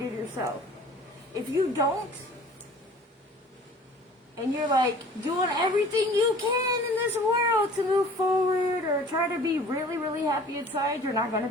yourself. If you don't, and you're like doing everything you can in this world to move forward or try to be really, really happy inside, you're not going to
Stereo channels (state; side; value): normal; both; correlation 0.48